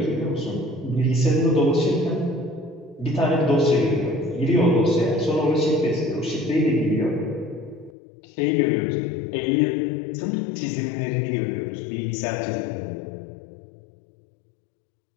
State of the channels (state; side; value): drops out; right; at 8.0 s